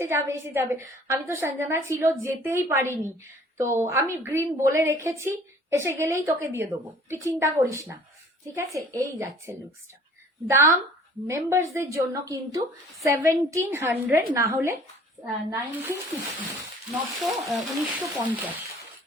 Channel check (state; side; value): normal; both; correlation 0.51